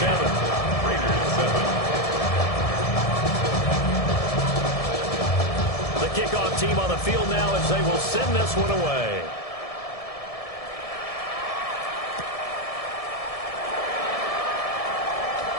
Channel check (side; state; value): right; late; 1.7 ms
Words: The kickoff team on the field now as they will send this one away.